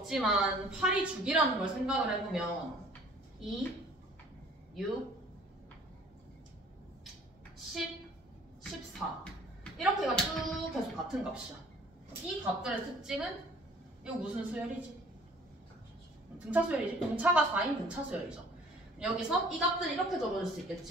8이 주기라는 걸 생각을 해보면 2, 6, 10, 14 이렇게가 쭉 계속 같은 값이야. 이 값들의 특징은 이거 무슨 수열이지? 등차 수열이지? 등차가 4인 등차 수열이죠. 여기서 이 값들을 이렇게 적어줄 수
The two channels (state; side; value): normal; both; correlation 0.53